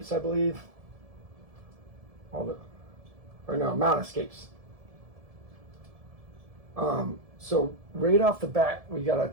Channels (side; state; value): left; late; 1.7 ms